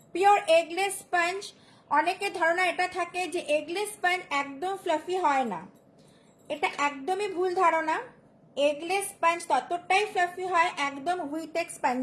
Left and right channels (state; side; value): identical; both; correlation 1.00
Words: পিওর এগলেস স্পঞ্জ, অনেকের ধারণা এটা থাকে যে এগলেস স্পঞ্জ একদম ফ্লাফি হয় না, এটা একদমই ভুল ধারণা। এগলেস স্পঞ্জ ততটাই ফ্লাফি হয়, একদম হুইটেক্স